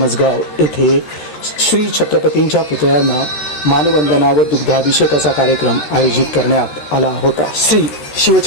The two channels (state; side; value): late; right; 13 ms